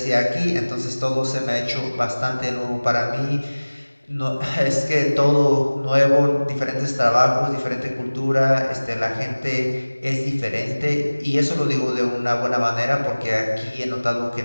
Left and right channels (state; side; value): inverted; both; correlation -1.00